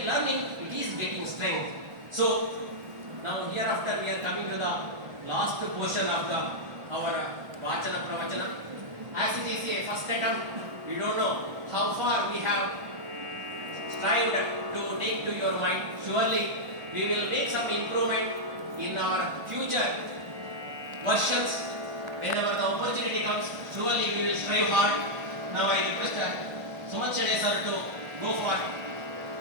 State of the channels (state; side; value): late; left; 1.4 ms